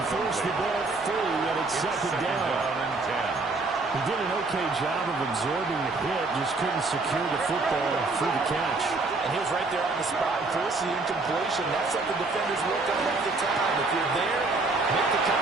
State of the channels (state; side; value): quieter; left; 3.5 dB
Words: Force the ball free, and it's second down. He did an okay job of absorbing the hit, just couldn't secure the football through the catch. And he was right there on the spot and forced the incompletion. That's something defenders work on all the time. If you're there, make the